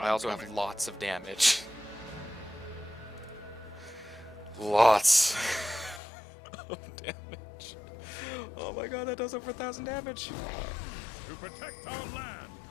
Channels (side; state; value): right; drops out; at 6.0 s